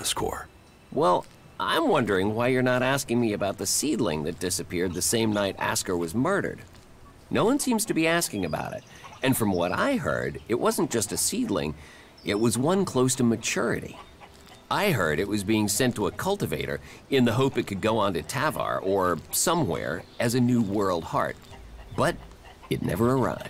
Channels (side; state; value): both; identical; correlation 1.00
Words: Well, I'm wondering why you're not asking me about the seedling that disappeared the same night Ascor was murdered. No one seems to be asking about it, and from what I heard, it wasn't just a seedling, it was one close to maturity. I heard it was being sent to a cultivator in the hope it could go on to Tavar or somewhere as a new world heart. But it never